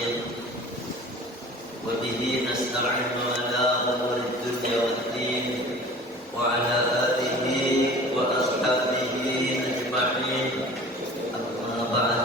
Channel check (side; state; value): both; normal; correlation 0.43